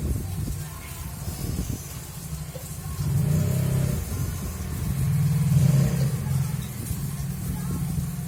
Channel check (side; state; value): both; identical; correlation 1.00